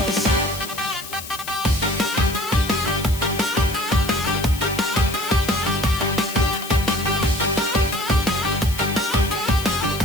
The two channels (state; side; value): noise; left; hiss, 12 dB below the sound